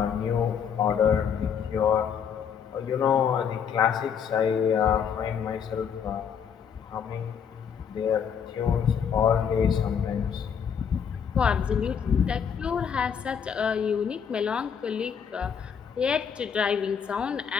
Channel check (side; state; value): right; quieter; 7.4 dB